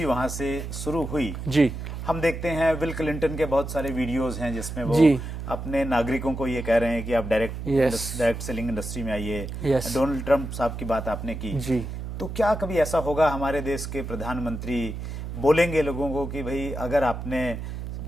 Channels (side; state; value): right; noise; hum, 7 dB below the sound